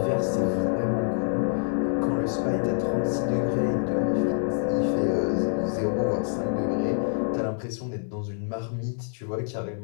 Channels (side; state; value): right; silent; 61 dB below the other